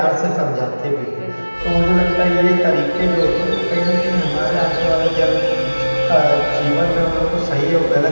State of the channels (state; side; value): inverted; both; correlation -1.00